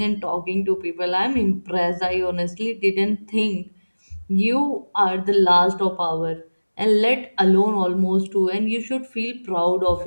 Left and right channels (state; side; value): inverted; both; correlation -1.00